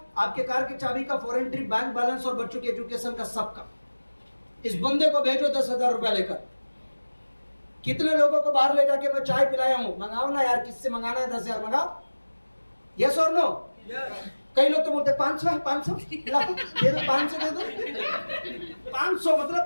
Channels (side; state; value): both; inverted; correlation -1.00